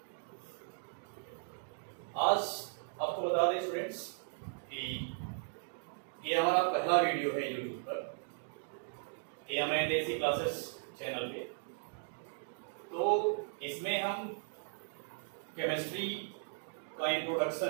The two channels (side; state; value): left; silent; digital silence